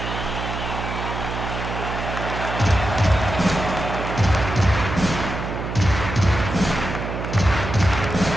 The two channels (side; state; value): right; noise; hum, 5 dB below the sound